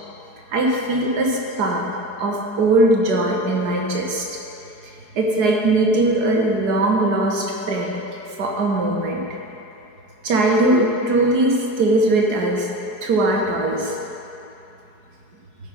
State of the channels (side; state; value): left; late; 4.7 ms